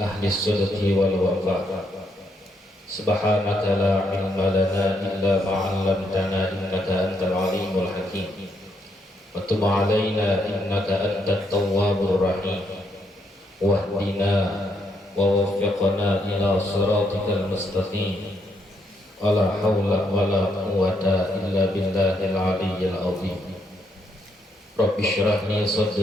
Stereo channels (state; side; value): normal; both; correlation 0.76